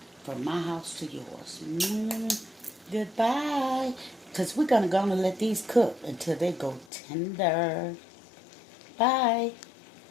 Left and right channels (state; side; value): drops out; right; at 6.9 s